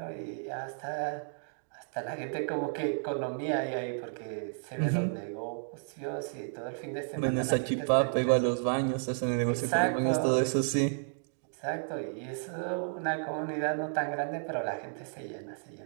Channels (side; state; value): left; silent; digital silence